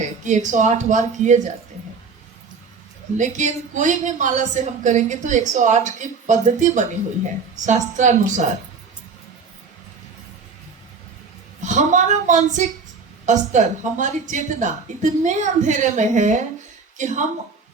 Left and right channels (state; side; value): quieter; left; 5.0 dB